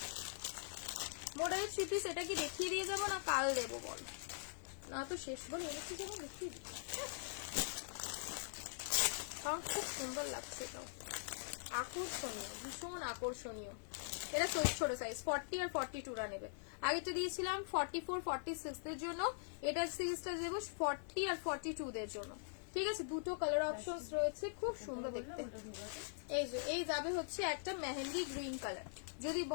মোডালের 3 পিস, এটা কি দেখিয়ে দিয়ে যাবো না কাল দেবো বল? না তো শেষ বল এনেছি যেমন দেখিয়ে দিই, কারণ খুব সুন্দর লাগছে, এটাও আকর্ষণীয়, ভীষণ আকর্ষণীয়। এটা ছোট সাইজ 40 আর 42 রা নেবে। আগেটা দিয়েছিলাম 44, 46 দের জন্য, এটা সিরিজটা দেবো 40 আর 42 দের জন্য, ঠিক আছে? দুটো কালার অপশনস রয়েছে, খুব সুন্দর দেখতে। এই যে এই যাবে হচ্ছে একটা মেহেন্দি গ্রিন কালার, যদি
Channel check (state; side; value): silent; right; digital silence